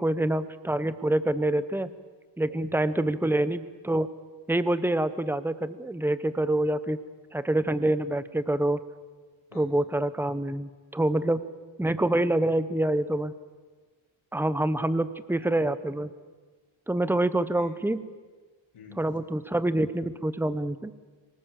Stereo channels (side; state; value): both; normal; correlation 0.88